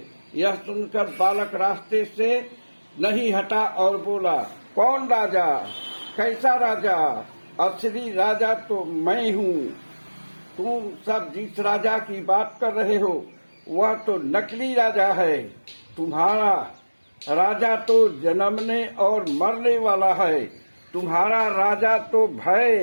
यह सुनकर बालक रास्ते से नहीं हटा और बोला, कौन राजा? कैसा राजा? असली राजा तो मैं हूँ। तुम सब जिस राजा की बात कर रहे हो वह तो नकली राजा है। तुम्हारा राजा तो जन्मने और मरने वाला है। तुम्हारा राजा तो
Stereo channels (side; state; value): both; inverted; correlation -1.00